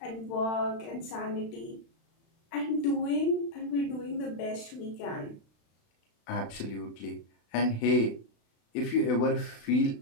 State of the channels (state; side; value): late; right; 36 ms